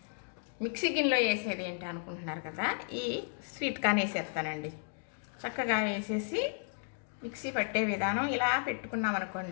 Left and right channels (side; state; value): right; silent; 55 dB below the other